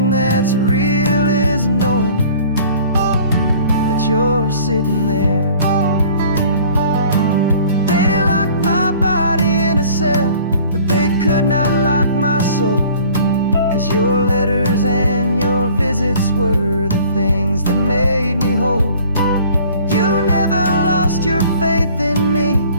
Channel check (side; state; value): both; inverted; correlation -0.50